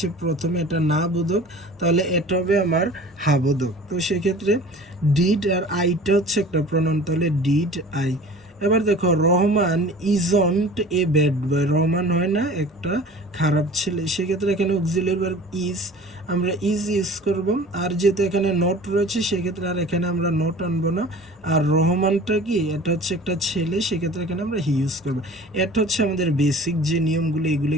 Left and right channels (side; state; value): both; normal; correlation 0.43